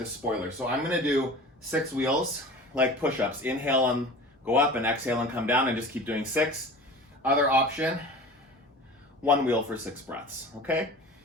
spoiler. So I'm gonna do 6 wheels, like push-ups. Inhale and go up, and exhale and come down, and just keep doing 6. Other option, 1 wheel for 6 breaths, okay?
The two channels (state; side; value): normal; both; correlation 0.38